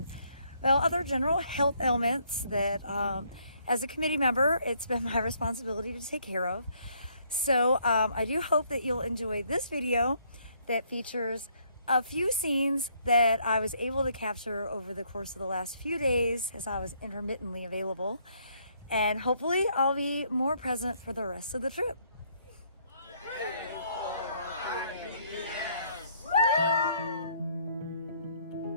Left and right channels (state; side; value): inverted; both; correlation -0.68